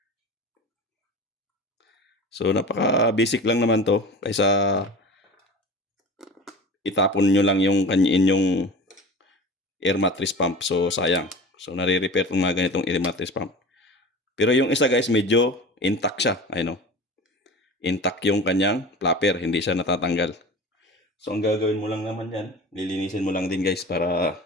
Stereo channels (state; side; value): normal; both; correlation 0.36